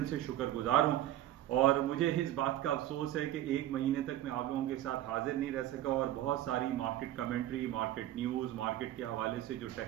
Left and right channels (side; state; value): left; quieter; 13.4 dB